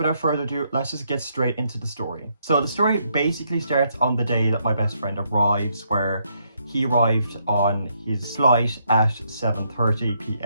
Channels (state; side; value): inverted; both; correlation -0.75